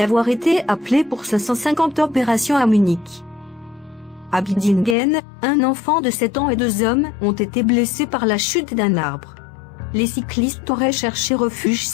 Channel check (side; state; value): right; drops out; at 5.0 s